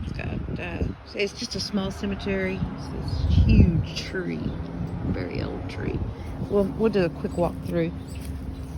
it's just a small cemetery. It's this huge tree, very old tree. We'll do a quick walk through.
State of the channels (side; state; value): both; identical; correlation 1.00